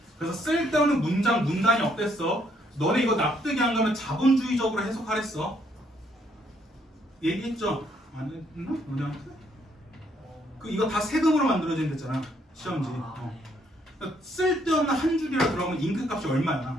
그래서 쓸데없는 문장, 문단이 없댔어. 너네 이거 납득이 안 가면 자본주의적으로 해석하랬어. 얘기했죠? 안 했나? 너네한테? 이거 다 세금으로 만들어진 데잖아. 시험지. 그러니까 쓸데없는 한 줄이라 그러면 잉크 값이 얼마야?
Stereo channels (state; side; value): normal; both; correlation 0.70